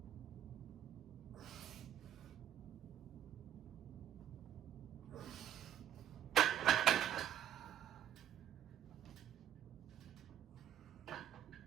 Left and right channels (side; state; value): left; quieter; 10.6 dB